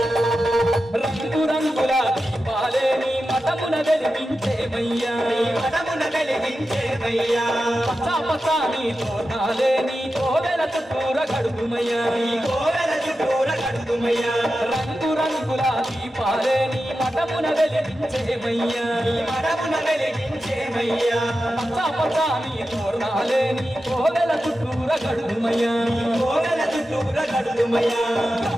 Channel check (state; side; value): normal; both; correlation 0.91